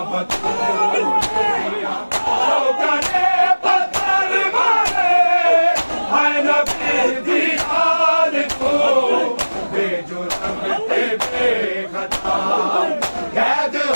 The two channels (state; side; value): inverted; both; correlation -1.00